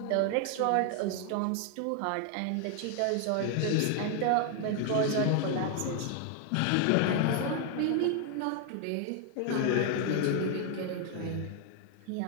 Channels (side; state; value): both; different; correlation 0.00